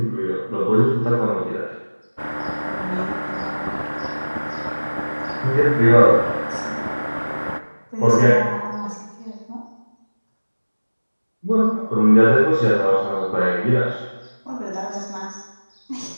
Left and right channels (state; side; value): inverted; both; correlation -1.00